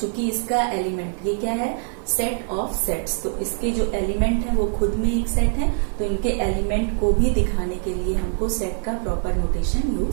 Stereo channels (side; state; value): left; silent; 63 dB below the other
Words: इसका एलिमेंट ये क्या है, सेट ऑफ सेट्स, तो इसके जो एलिमेंट है वो खुद में एक सेट है, तो इनके एलिमेंट को भी दिखाने के लिए हमको सेट का प्रॉपर नोटेशन